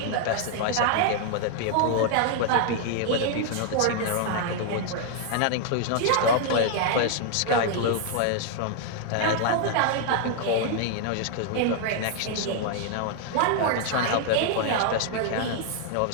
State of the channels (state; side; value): different; both; correlation 0.00